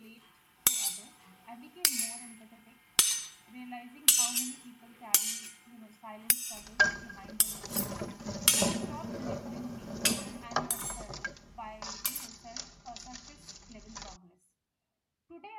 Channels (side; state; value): both; identical; correlation 1.00